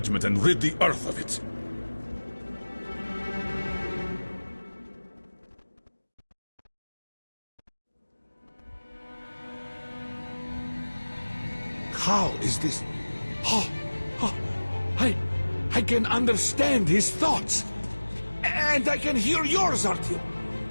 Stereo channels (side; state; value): both; inverted; correlation -1.00